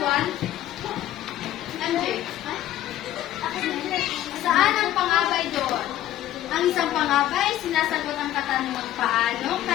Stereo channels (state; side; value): quieter; right; 13.1 dB